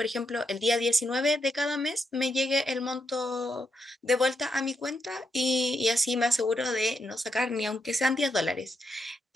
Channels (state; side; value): normal; both; correlation 0.81